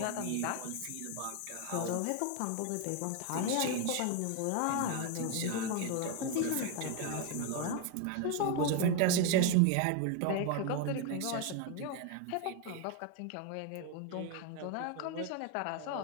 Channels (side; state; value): both; different; correlation 0.01